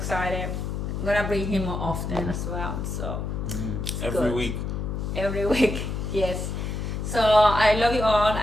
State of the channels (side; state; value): left; noise; hum, 3 dB below the sound